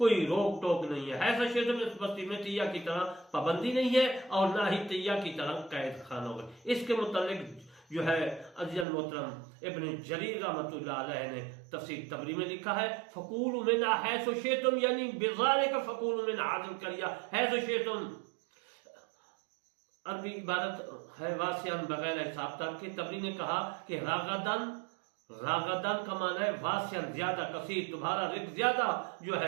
روک ٹوک نہیں ہے۔ ایسا شیطان میں اس بستی میں تیہ کی طرح پابندی نہیں ہے اور نہ ہی تیہ کی طرح قید خانہ ہوگا۔ اس کے متعلق جو ہے عزیز المحترم ابن جریر رحمۃ اللہ علیہ نے تفسیر تبری میں لکھا ہے فکولوا منہا حیث شئتم، یعنی بذالک فکولوا من هذه القرية حیث شئتم، عربی عبارت ہے واسعاً بغیر حساب تک کے۔ تبری نے کہا کہ راغدن کا معنی ہے واسعاً زیادہ، کثیر، تمہارا رزق زیادہ جو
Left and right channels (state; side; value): drops out; left; at 8.8 s